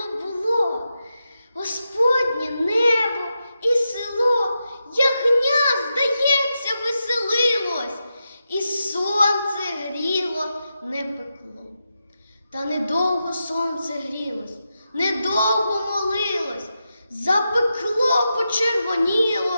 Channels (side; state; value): both; inverted; correlation -0.88